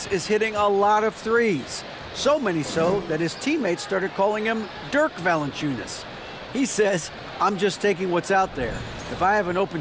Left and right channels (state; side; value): identical; both; correlation 1.00